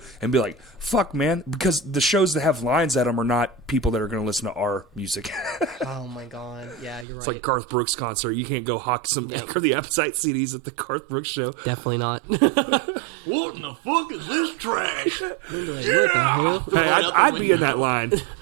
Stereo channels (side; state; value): left; drops out; at 7.1 s